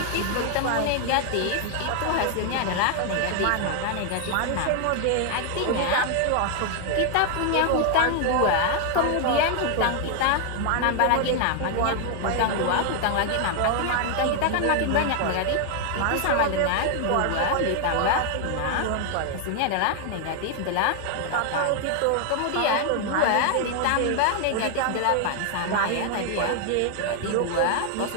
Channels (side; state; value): both; different; correlation 0.00